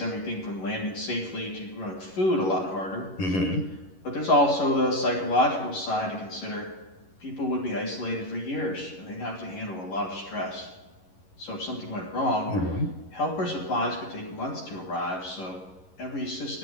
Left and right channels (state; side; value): late; right; 11 ms